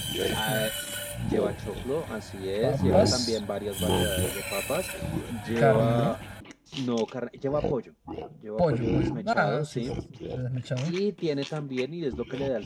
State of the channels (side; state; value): both; identical; correlation 1.00